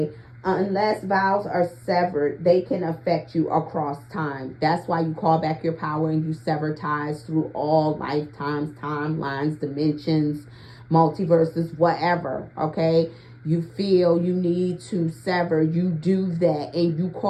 Unless vows are severed, they can affect you across time. That's why you call back your power and you sever ties through all lifetimes, timelines, dimensions, multiverses, whatever, okay? You feel you need to sever, you do that, and you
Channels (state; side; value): identical; both; correlation 1.00